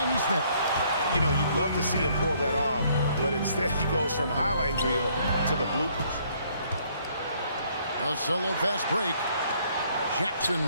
Neesmith. You know, you'd love to see him pull that off, but instead he goes from highlight reel to the bloopers. A solo fast break.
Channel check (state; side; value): inverted; both; correlation -0.65